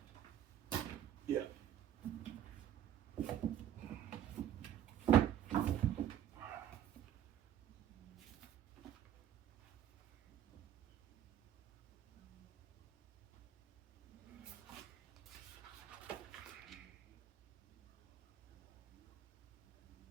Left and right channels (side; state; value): left; quieter; 10.7 dB